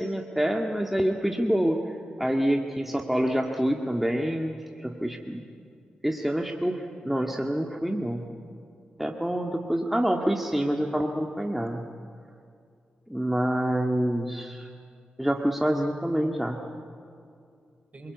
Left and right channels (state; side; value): normal; both; correlation 0.96